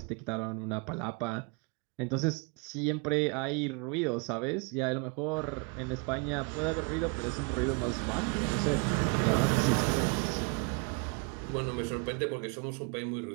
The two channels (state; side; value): quieter; left; 33.6 dB